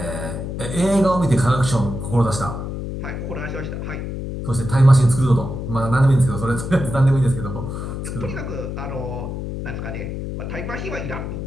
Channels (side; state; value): left; noise; hum, 5 dB below the sound